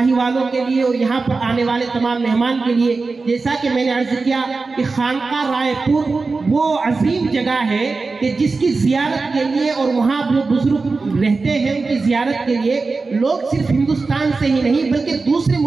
والوں کے لیے اور یہاں پر آنے والے تمام مہمان کے لیے. جیسا کہ میں نے عرض کیا کہ خانقاہ رائے پور وہ عظیم جگہ ہے کہ جس کی زیارت کے لیے اور وہاں جو بزرگ رہتے ہیں ان کی زیارت کے لیے لوگ صرف ہندوستان سے ہی نہیں بلکہ دوسرے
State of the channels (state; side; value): quieter; left; 4.0 dB